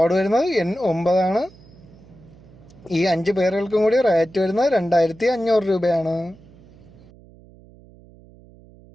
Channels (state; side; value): noise; right; hum, 24 dB below the sound